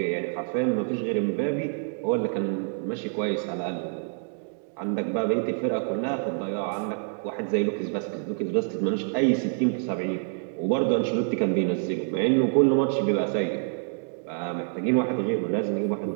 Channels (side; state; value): left; silent; 60 dB below the other